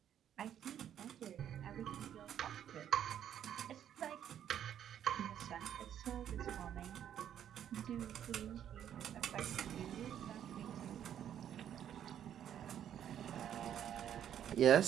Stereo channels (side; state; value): left; quieter; 9.9 dB